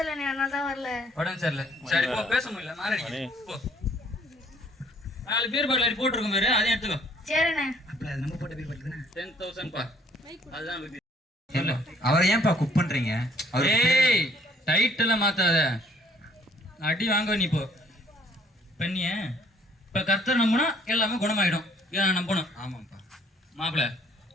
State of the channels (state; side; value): normal; both; correlation 0.61